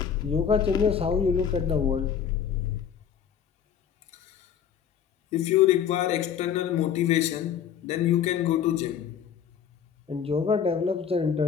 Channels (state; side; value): quieter; right; 8.1 dB